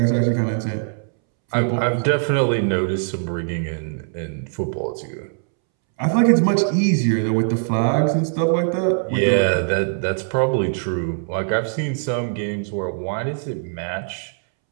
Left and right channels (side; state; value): left; silent; 65 dB below the other